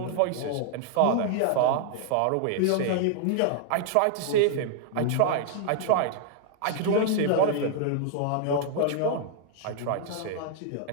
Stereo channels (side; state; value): both; different; correlation -0.01